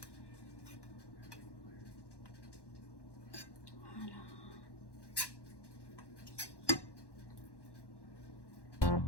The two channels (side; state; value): right; late; 1.1 ms